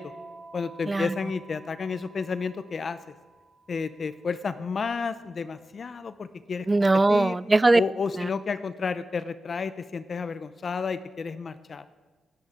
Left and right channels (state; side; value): normal; both; correlation 0.92